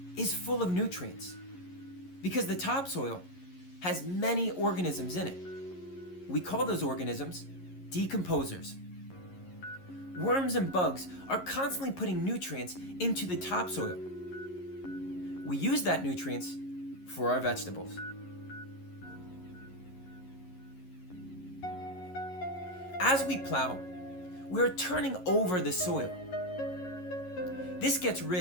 is full of nutrients because the topsoil has many organisms in it. We call those organisms decomposers. Worms and bugs are constantly putting nutrients into the topsoil. We use that nutrients for our vegetables. As we plow, we're turning over the soil. This gets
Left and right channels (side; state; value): right; late; 11 ms